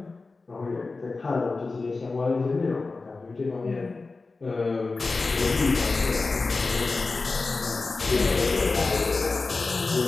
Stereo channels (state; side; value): quieter; right; 3.8 dB